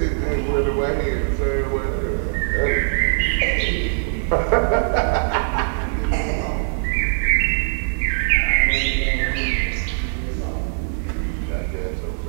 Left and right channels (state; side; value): silent; left; digital silence